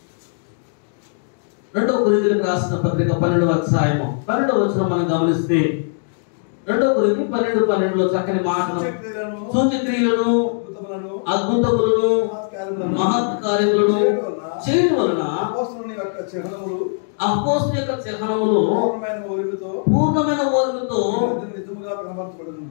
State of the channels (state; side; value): silent; right; digital silence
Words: 2వ కొరింథీయులకు రాసిన పత్రిక 12వ అధ్యాయము 12వ వచనం మనం గమనిస్తే 2వ కొరింథీ 12:12లో చక్కని మాటలు, సూచక్రియలను, అద్భుతములను, మహత్ కార్యములను చేయడం వలన అపోస్తలుని యొక్క చిహ్నములు పూర్ణమైన ఓర్మితో